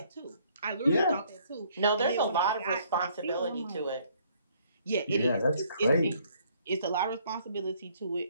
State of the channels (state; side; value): inverted; both; correlation -0.64